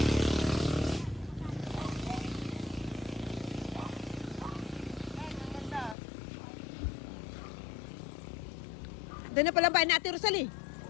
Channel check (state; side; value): drops out; right; at 6.0 s